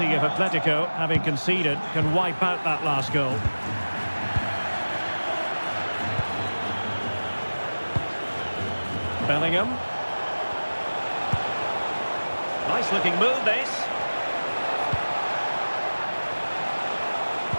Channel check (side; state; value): both; inverted; correlation -1.00